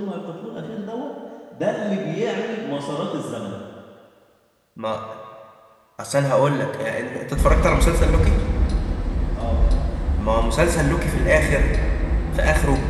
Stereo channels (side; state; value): both; identical; correlation 1.00